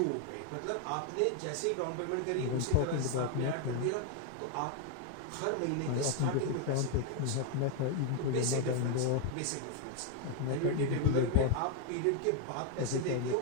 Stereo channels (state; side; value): different; both; correlation 0.00